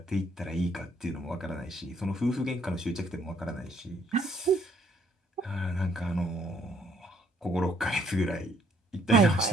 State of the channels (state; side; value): normal; both; correlation 0.67